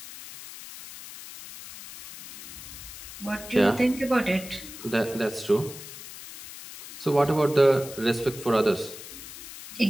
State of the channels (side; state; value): left; noise; hiss, 14 dB below the sound